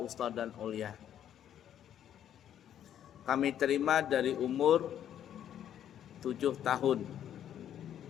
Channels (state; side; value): quieter; right; 10.3 dB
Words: Wusta, dan Ulya. Kami terima dari umur 7 tahun.